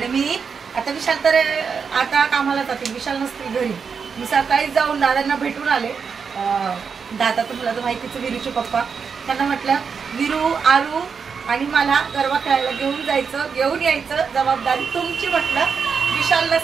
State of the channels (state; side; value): quieter; left; 6.0 dB